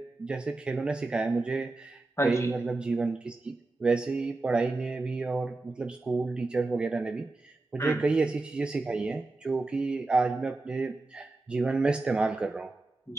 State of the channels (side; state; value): left; quieter; 3.2 dB